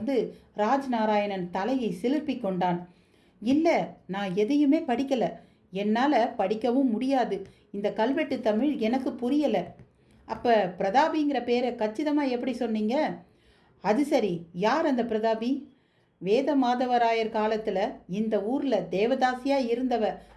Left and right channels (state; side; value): identical; both; correlation 1.00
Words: ராஜ்நாராயணன் தலையை சிலிர்ப்பி கொண்டான். இல்லை, நான் எதையுமே படிக்கலை. என்னால் படிக்கவும் முடியாது. இந்த கல்வெட்டு தமிழ் எனக்கு புரியலை. அப்போ பிரதாபிங்கிற பேரை கச்சிதமாக எப்படி சொன்னீங்க? அது சரி, யார் அந்த பிரதாபி? வேத மாதவராயர் காலத்தில் இந்த ஊரில் தேவதாசியாக இருந்தவ